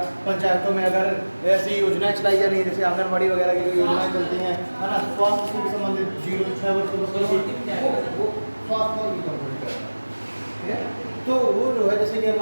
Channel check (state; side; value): inverted; both; correlation -1.00